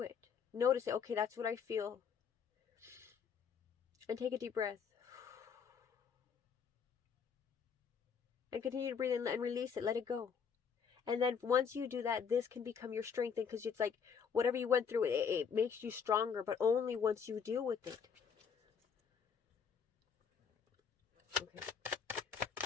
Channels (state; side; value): quieter; right; 6.6 dB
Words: it. Notice it. Okay, that's what I feel. And take a deep breath. And continue to breathe and release it. Let it go. And then once you do that, this can become your strength, because it's like whatever you went through, it makes you stronger, but only once you deal with it. Okay.